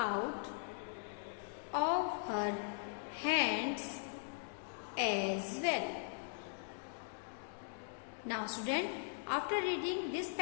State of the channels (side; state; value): right; silent; digital silence